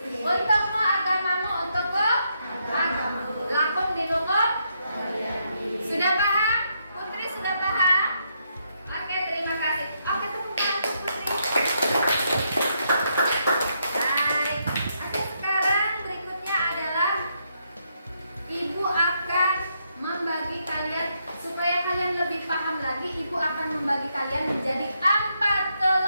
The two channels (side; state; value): both; inverted; correlation -0.78